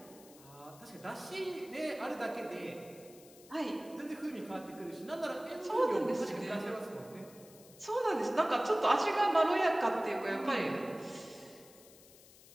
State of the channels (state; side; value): noise; left; hiss, 22 dB below the sound